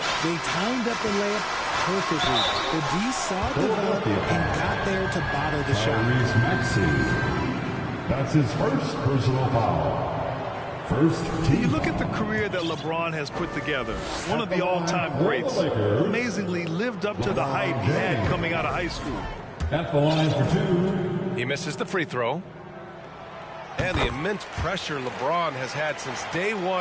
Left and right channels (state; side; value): identical; both; correlation 1.00